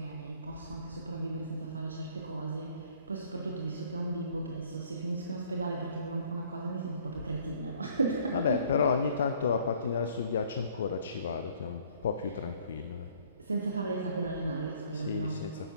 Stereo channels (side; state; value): both; inverted; correlation -0.58